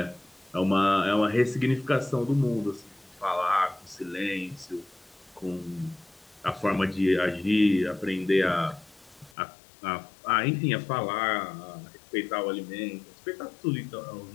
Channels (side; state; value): right; drops out; at 9.3 s